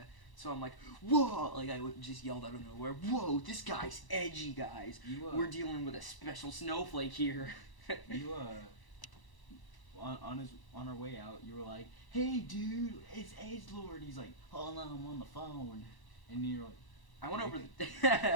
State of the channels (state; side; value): late; right; 1.0 ms